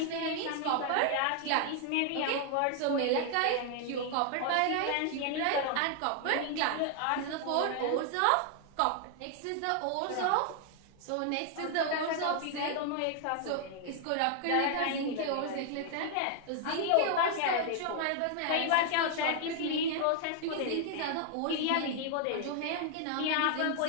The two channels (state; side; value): different; both; correlation 0.00